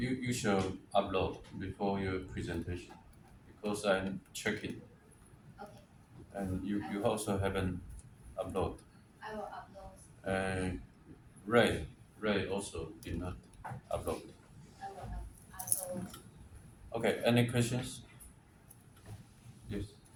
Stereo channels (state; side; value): identical; both; correlation 1.00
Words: should upload before your presentation because I'm checking. Okay. And you also haven't uploaded. I will upload. Ray also did not upload. I will. Okay, any questions? Yes.